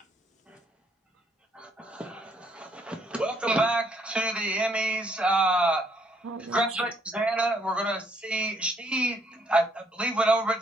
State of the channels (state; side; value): normal; both; correlation 0.69